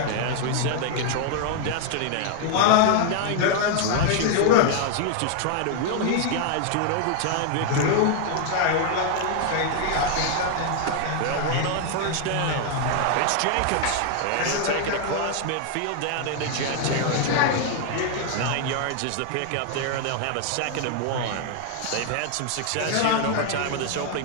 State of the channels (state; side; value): different; both; correlation 0.00